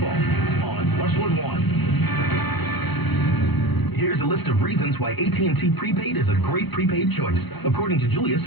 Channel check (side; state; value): right; late; 1.0 ms